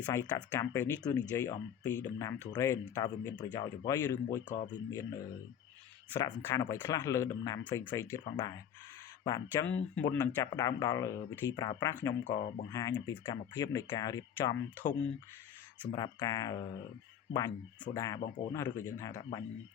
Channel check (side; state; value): right; quieter; 9.1 dB